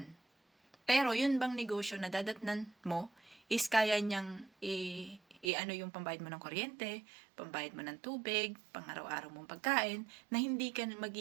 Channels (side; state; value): left; drops out; at 5.5 s